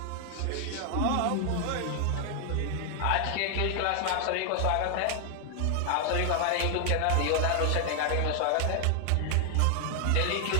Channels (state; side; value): different; both; correlation 0.00